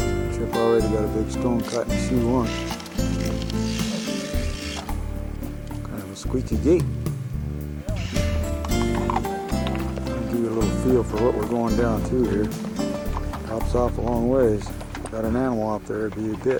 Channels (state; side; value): identical; both; correlation 1.00